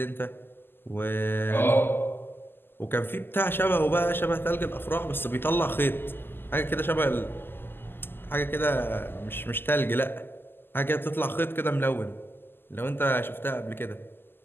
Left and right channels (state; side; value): late; right; 0.10 ms